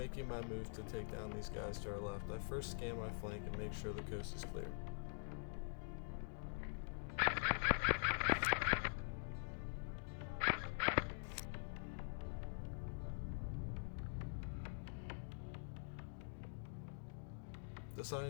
my move to take down these guys to our left, I first scan my flank and make sure the coast is clear.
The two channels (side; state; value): right; silent; digital silence